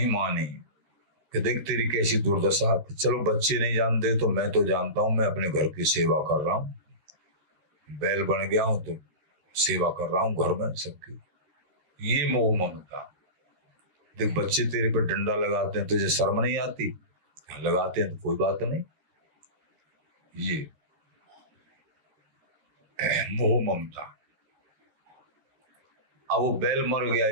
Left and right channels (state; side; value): late; left; 13 ms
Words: मानी कि देख तेरी कैसी दुर्दशा। चलो बच्चे नहीं जानते तो मैं तो जानता हूं, मैं अपने घर की सेवा कर रहा हूं, बैल बन गया हूं तो सेवा कर रहा हूं घर में सबकी। ये मोह ममता। देख बच्चे तेरे पर डंडा लगाते हैं, तुझे शर्म नहीं आती? लगाते हैं तो कोई बात नहीं। ये मोह ममता। अब वो बैल मर गया